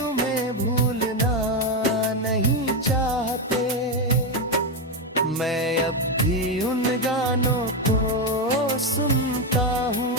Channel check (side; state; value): both; normal; correlation 0.08